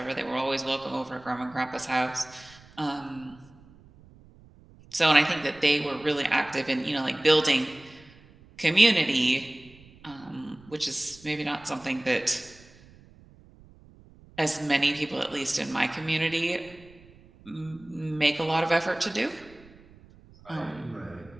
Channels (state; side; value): noise; right; rumble, 24 dB below the sound